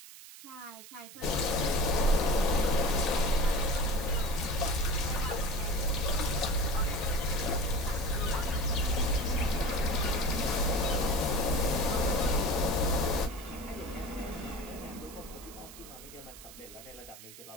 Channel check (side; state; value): right; noise; hiss, 17 dB below the sound